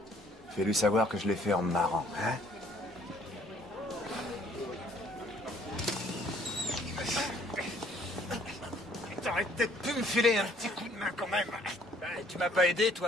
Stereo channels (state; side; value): normal; both; correlation 0.61